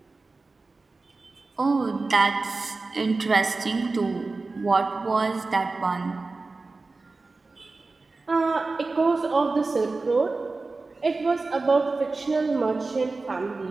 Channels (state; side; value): quieter; left; 3.6 dB